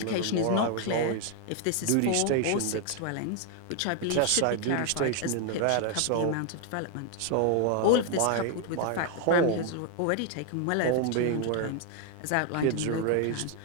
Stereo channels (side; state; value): both; different; correlation 0.00